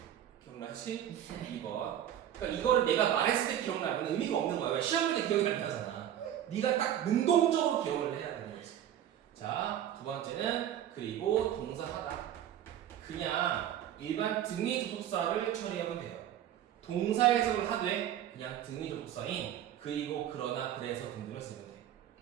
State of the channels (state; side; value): quieter; left; 11.0 dB